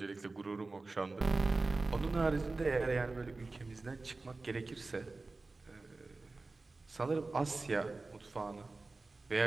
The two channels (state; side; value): quieter; left; 3.5 dB